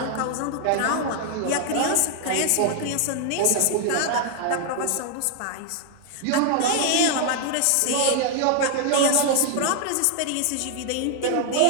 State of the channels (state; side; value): different; both; correlation 0.00